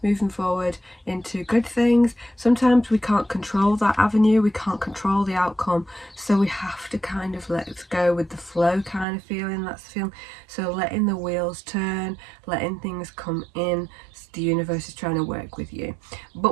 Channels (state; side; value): drops out; left; at 9.1 s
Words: moving forward into good things. Sometimes we can't control that avenue, we can't control the outcome, so we have to kind of let it go with the flow kind of feeling. That's the feeling. So letting the wheels turn, letting things come in. The universe is trying to work with you,